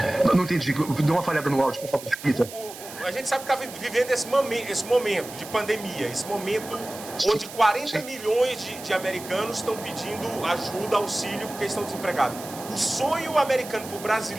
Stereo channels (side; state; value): right; noise; hiss, 14 dB below the sound